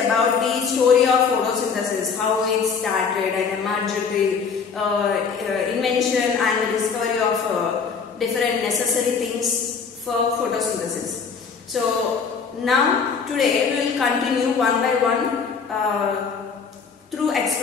the story of photosynthesis, how it started and emerged, the invention and the discovery of different necessary things for photosynthesis. So now today we will continue one by one through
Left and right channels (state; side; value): quieter; right; 5.7 dB